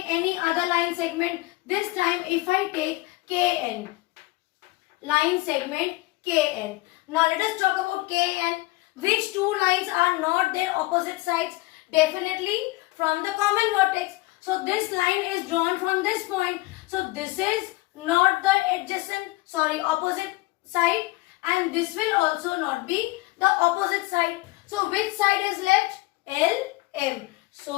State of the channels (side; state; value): right; quieter; 20.9 dB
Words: any other line segment. This time if I take KN, line segment KN. Now let us talk about KN. Which two lines are not their opposite sides? Definitely from the common vertex. So this line is drawn from this point. So this is not the opposite side, and this will also not be the opposite side. So which side is left? LM.